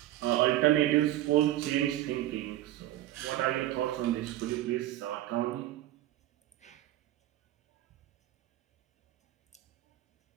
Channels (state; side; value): quieter; left; 14.3 dB